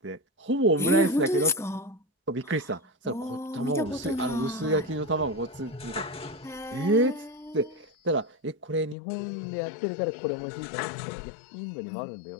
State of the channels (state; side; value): drops out; right; at 9.0 s